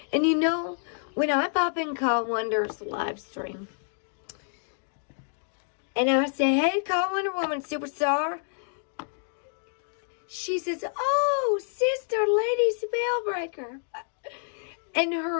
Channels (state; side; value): silent; right; digital silence